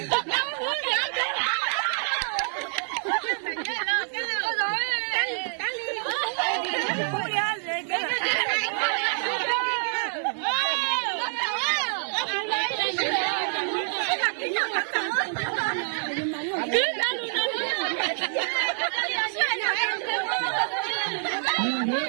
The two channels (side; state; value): left; silent; digital silence